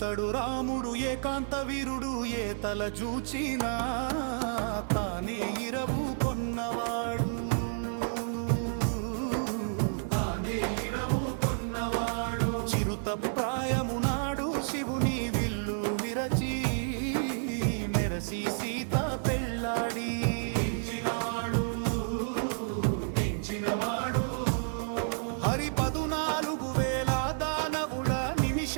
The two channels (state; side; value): silent; left; digital silence